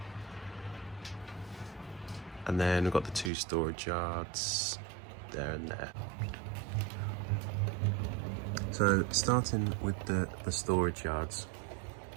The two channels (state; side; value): drops out; left; at 3.3 s